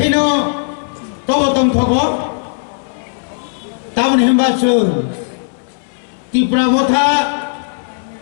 তবতম থব তামন হেমবাচুর ত্রিপুরা মথা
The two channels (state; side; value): silent; right; 66 dB below the other